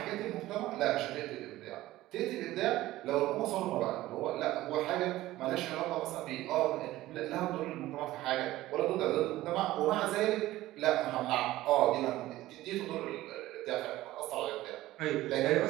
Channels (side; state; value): left; quieter; 16.3 dB